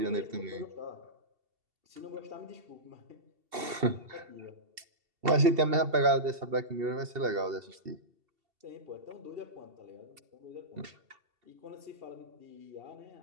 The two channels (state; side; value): late; left; 2.7 ms